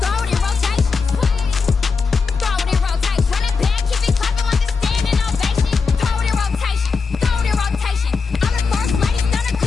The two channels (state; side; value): quieter; right; 4.9 dB